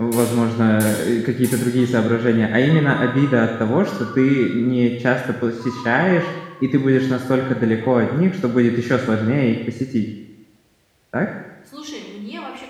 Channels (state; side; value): identical; both; correlation 1.00